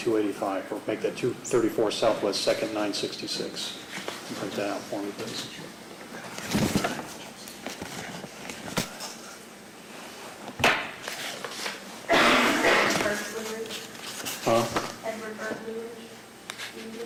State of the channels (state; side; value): identical; both; correlation 1.00